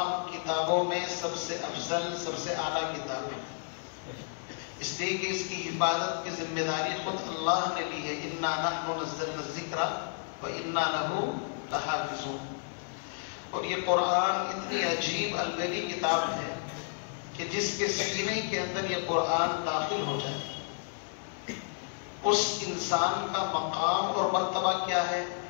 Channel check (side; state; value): right; silent; digital silence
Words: کتابوں میں سب سے افضل، سب سے اعلیٰ کتاب ہے، اس لیے کہ اس کی حفاظت کی ذمہ داری خود اللہ نے لی ہے۔ اِنَّا نَحْنُ نَزَّلْنَا الذِّكْرَ وَإِنَّا لَهُ لَحَافِظُونَ۔ اور یہ قرآن اتنی عجیب الگلی کتاب ہے کہ جس کے سینے کے اندر یہ قرآن داخل ہو جائے، اس انسان کا مقام اور مرتبہ کیا ہے